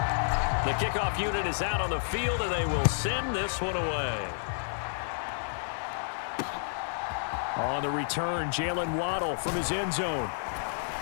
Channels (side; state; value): right; silent; digital silence